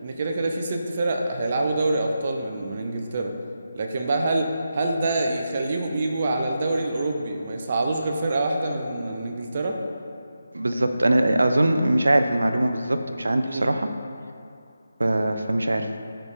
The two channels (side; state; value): both; inverted; correlation -0.90